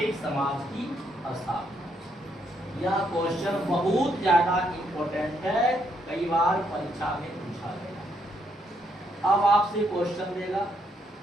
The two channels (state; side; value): normal; both; correlation 0.74